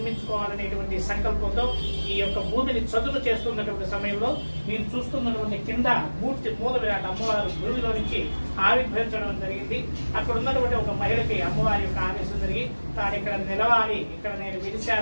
సంకల్పంతో ఈ యొక్క భూమిని చదును చేస్తున్నటువంటి సమయంలో మీరు చూస్తున్నటువంటి కింద మూర్తి మూల విరాట్ అమ్మవారు భూమిలో నుంచి ఆవిర్భవించడం జరిగింది. అక్కడ ఉన్నటువంటి ఒక మహిళకి అమ్మవారి యొక్క ఆదేశం జరిగి తాను ఇక్కడ నిలవాలి, ఇక్కడ నేను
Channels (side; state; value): both; inverted; correlation -1.00